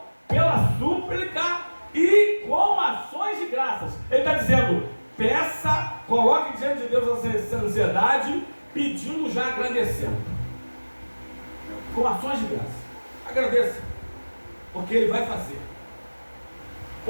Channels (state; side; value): inverted; both; correlation -1.00